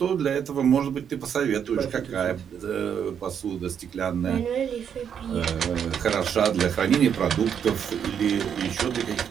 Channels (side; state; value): left; quieter; 8.1 dB